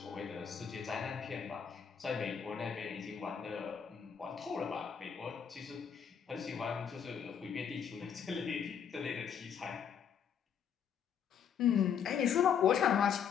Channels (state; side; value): quieter; right; 7.8 dB